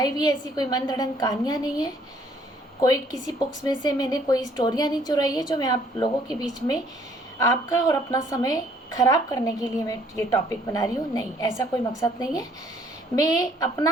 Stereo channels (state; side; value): normal; both; correlation 0.62